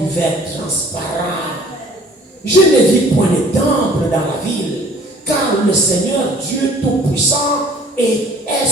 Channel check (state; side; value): normal; both; correlation 0.53